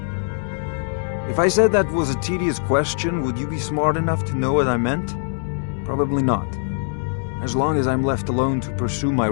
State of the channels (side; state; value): right; silent; digital silence